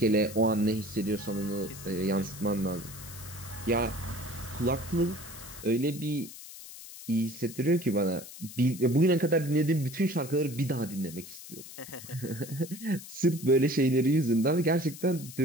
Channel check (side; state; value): left; noise; hiss, 14 dB below the sound